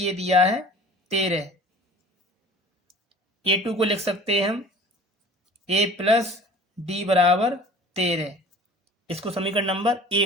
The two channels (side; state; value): both; normal; correlation 0.44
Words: दिया है 13। A2 को लिख सकते हैं हम A प्लस D बराबर 13। इसको समीकरण नंबर